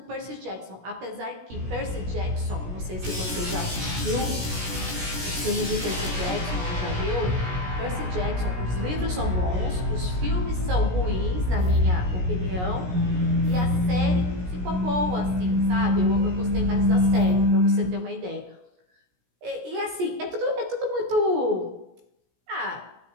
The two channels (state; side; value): late; left; 17 ms